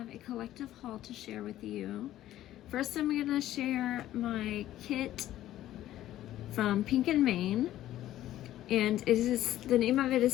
a collective haul to share with you. First, I'm going to share my kit from Pink and Main, and the name of it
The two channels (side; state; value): right; quieter; 13.5 dB